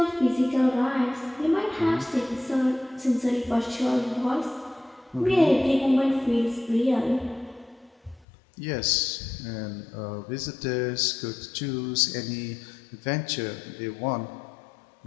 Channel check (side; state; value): right; drops out; at 8.2 s